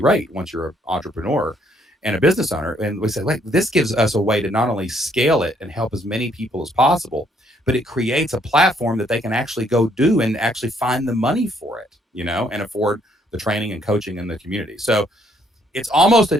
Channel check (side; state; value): both; normal; correlation 0.68